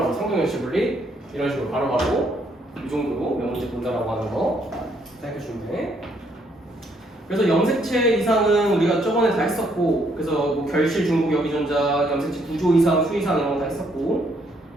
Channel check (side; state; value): both; normal; correlation 0.70